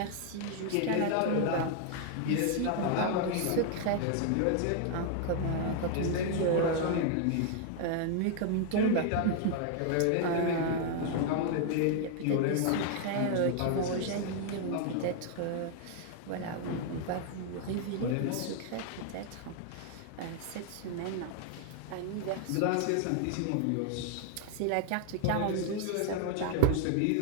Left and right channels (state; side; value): different; both; correlation 0.00